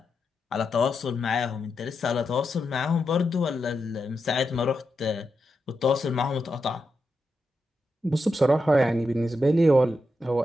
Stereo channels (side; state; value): both; normal; correlation 0.86